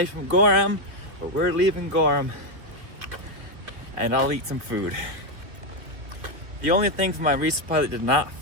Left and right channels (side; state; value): left; late; 2.8 ms